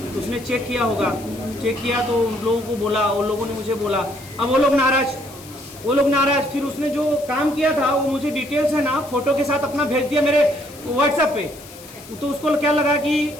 उसने चेक किया होगा, चेक किया तो उन लोगों को बोला, उन लोगों ने मुझे बोला। अब वो लोग नाराज। फिर उसने जो काम किया था वो मुझे डिटेल्स है ना फोटो के साथ अपना भेज दिया मेरे व्हाट्सएप पे। तो उसको क्या लगा कि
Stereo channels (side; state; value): left; noise; hiss, 19 dB below the sound